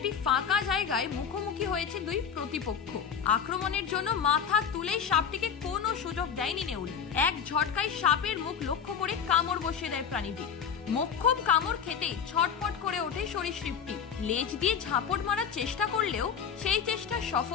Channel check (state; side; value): quieter; right; 7.4 dB